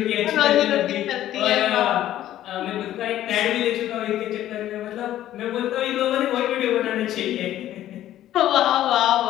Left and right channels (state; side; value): quieter; right; 12.9 dB